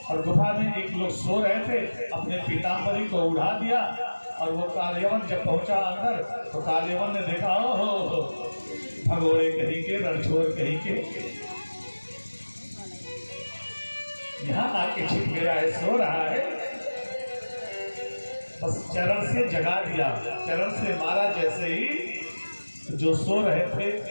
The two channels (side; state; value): both; inverted; correlation -1.00